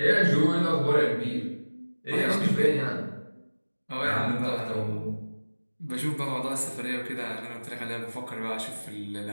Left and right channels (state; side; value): inverted; both; correlation -1.00